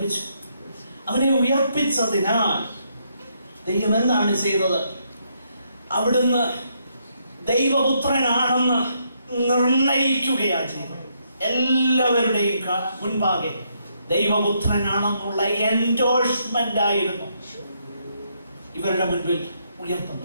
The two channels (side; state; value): both; inverted; correlation -0.75